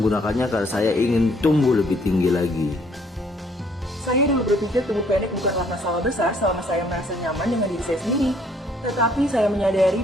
karena saya ingin tumbuh lebih tinggi lagi. Saya dulu berpikir tumbuh pendek bukanlah masalah besar selama saya merasa nyaman dengan diri saya sendiri. Tetapi saya menyadari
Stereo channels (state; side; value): normal; both; correlation 0.64